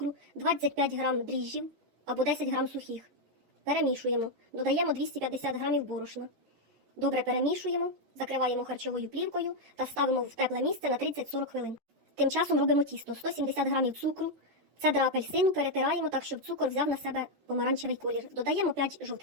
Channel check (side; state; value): left; late; 13 ms